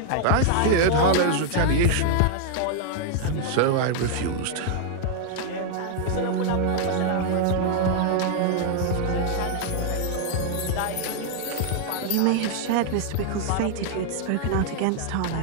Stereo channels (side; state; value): both; different; correlation 0.00